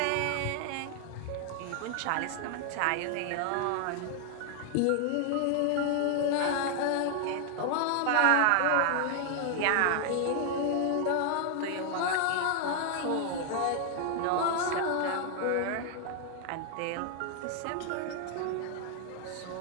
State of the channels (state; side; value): different; both; correlation 0.00